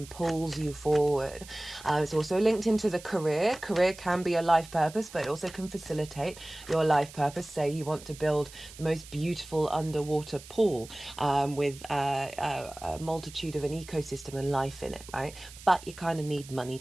pulls you forward. It's also linked into the career. Career can be a life purpose, but it also can facilitate your life purpose. Say you want to build the most beautiful underwater pool with a multitude of an ecosystem and life in it, right? But you kind of need money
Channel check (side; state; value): right; noise; hiss, 18 dB below the sound